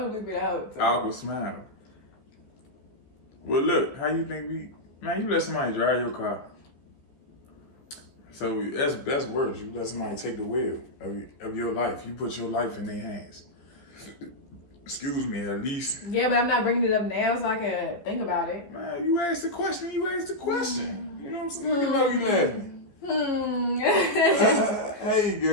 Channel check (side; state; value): right; late; 14 ms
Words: beep it out. Awkward smile. Well, look, how you think man, you let somebody drive your car. So that's worse. You let somebody take the wheel of your life. You put your life in their hands. Excuse me, at least. Yeah, but I'm not bringing it up now so I can think about it. Man, you asked the question. You know what I'm saying? Look at you laughing. Hey,